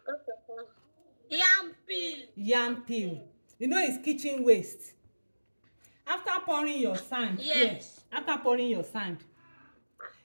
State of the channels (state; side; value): inverted; both; correlation -1.00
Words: Yam peel. Yam peel. You know it's kitchen waste. After pouring your sand, Yes. after pouring your sand,